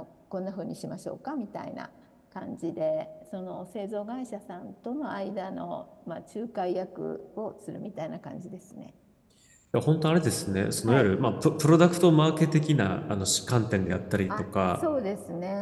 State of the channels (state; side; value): identical; both; correlation 1.00